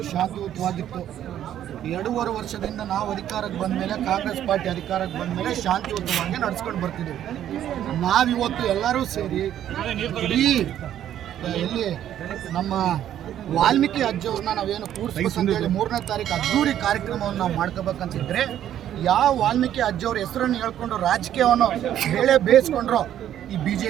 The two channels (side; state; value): left; quieter; 11.1 dB